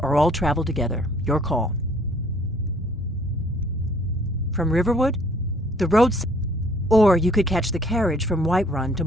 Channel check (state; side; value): normal; both; correlation 0.59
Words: or all travel together. Your call. From Riverwood? The road's... Or you could catch the carriage from Whiterun to